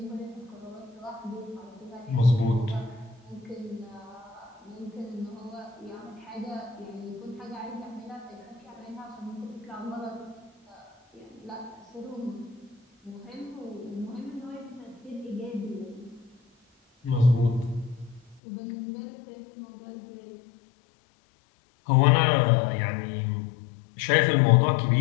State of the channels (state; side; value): drops out; right; at 18.4 s